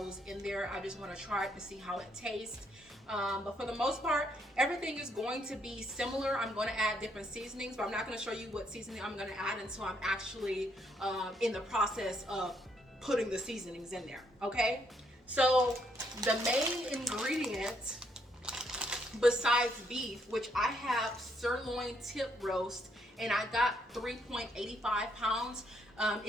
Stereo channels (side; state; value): both; normal; correlation 0.73